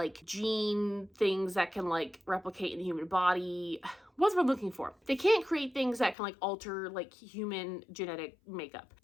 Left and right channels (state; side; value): drops out; right; at 6.2 s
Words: gene things that can like replicate in the human body. What's what I'm looking for? They can't create things that can like alter like human genetic makeup.